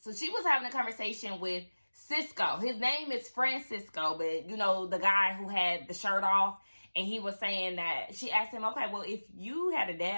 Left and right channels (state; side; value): inverted; both; correlation -1.00